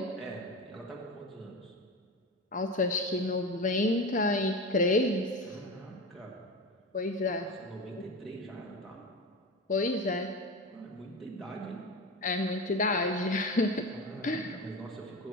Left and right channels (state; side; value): normal; both; correlation 0.25